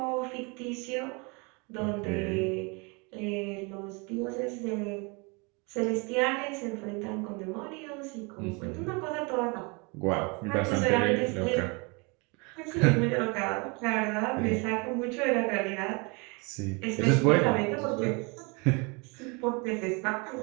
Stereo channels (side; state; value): left; quieter; 30.1 dB